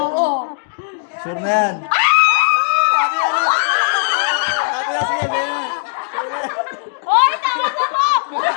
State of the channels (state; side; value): silent; right; digital silence